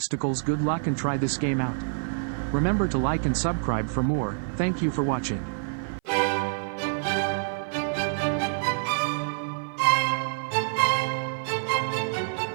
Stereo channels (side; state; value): left; silent; 55 dB below the other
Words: Good luck and try this game out. Remember to like and subscribe for more. Thank you for watching.